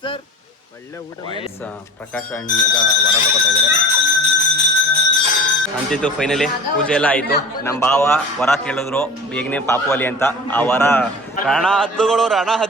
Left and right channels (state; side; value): normal; both; correlation 0.37